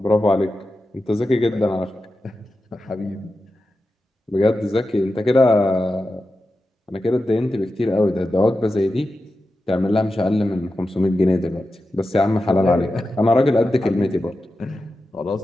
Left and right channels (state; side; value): normal; both; correlation 0.91